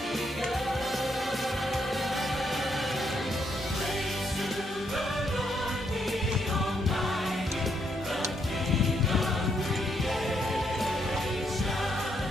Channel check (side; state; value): both; normal; correlation 0.76